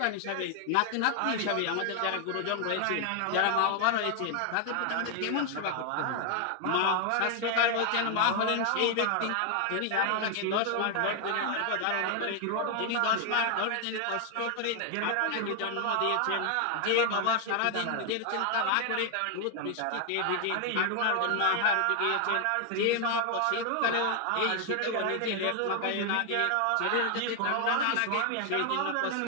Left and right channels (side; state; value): both; different; correlation 0.00